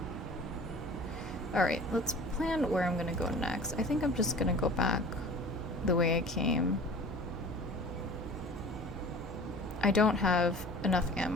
Alright, let's plan where I'm gonna go next. I think I'm just gonna go back the way I came. I don't have enough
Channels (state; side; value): normal; both; correlation 0.43